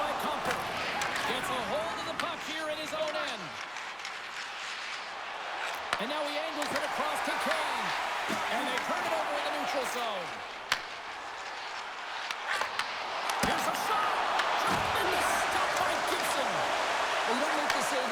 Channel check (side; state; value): both; identical; correlation 1.00